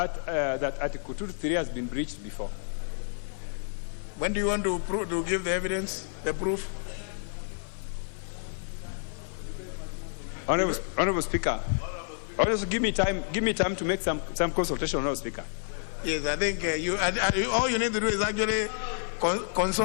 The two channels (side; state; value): right; silent; digital silence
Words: 2-3 has been breached before. When do you want to give the evidence, the proof? Honorable Speaker, also give me time to make some consultation, Honorable Speaker. Yes, I think all you need to do is actually